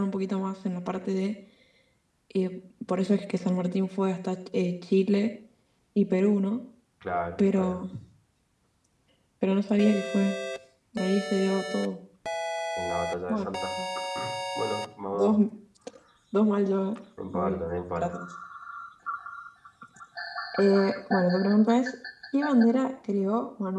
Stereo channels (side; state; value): both; identical; correlation 1.00